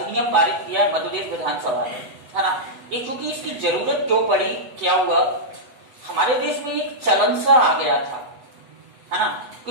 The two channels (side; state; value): left; late; 8.0 ms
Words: पारित किया है मध्य प्रदेश विधानसभा में, है ना। ये क्योंकि इसकी जरूरत क्यों पड़ी, क्या हुआ, हमारे देश में एक चलन सा आ गया था, है ना,